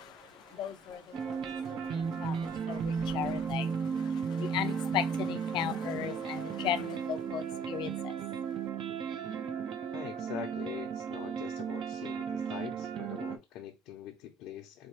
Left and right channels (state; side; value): normal; both; correlation 0.58